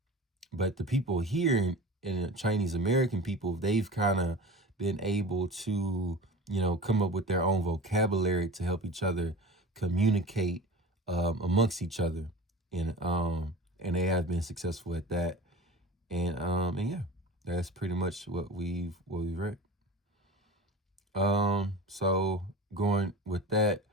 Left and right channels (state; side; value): normal; both; correlation 0.35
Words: but the people here in Chinese American people, they've kind of been able to, come up with their own vocabulary to help each other communicate amongst each other. And they have been successful at that. And yeah, that's pretty much what we've read. So going with that,